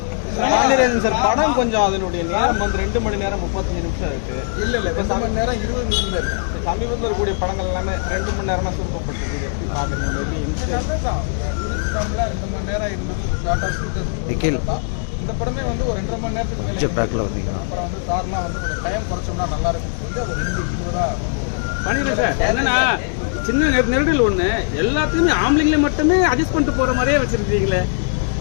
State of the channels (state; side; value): silent; right; digital silence